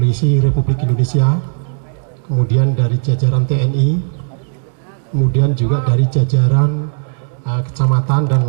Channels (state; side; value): silent; left; digital silence